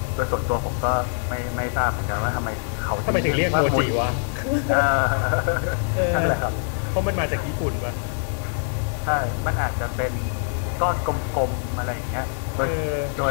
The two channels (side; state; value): right; silent; digital silence